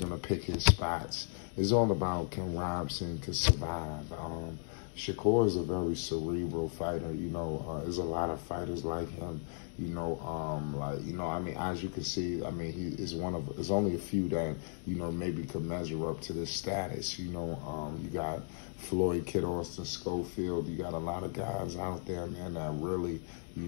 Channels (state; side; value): silent; right; digital silence